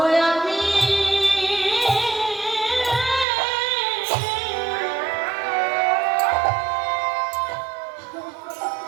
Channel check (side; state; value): left; drops out; at 3.2 s